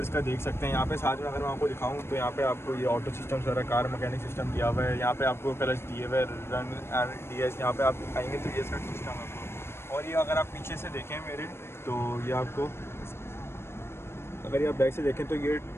का देख सकते हैं। यहाँ पे साथ में अगर मैं आपको दिखाऊँ तो यहाँ पे आपको ये ऑटो सिस्टम सारा कार मैकेनिक सिस्टम दिया हुआ है। यहाँ पे आपको क्लच दिए हुए, रन एंड डीएस। यहाँ पे आप आएंगे तो ये इसका सिस्टम है। और ये अगर आप पीछे से देखें मेरे, तो ये आपको, अगर ये आप बैक से देखें तो ये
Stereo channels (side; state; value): right; late; 0.12 ms